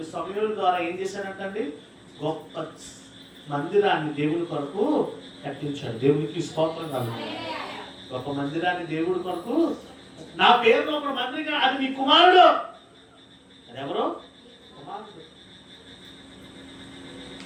సమూయేలు ద్వారా ఏం చేశాడంటండి? గొప్ప మందిరాన్ని దేవుని కొరకు కట్టించాడు. దేవునికి స్తోత్రం కలుగుతుంది. గొప్ప మందిరాన్ని దేవుడి కొరకు, నా పేరులో ఒక మందిరం, అది మీ కుమారుడు. అది ఎవరు? కుమారుడు.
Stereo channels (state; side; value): identical; both; correlation 1.00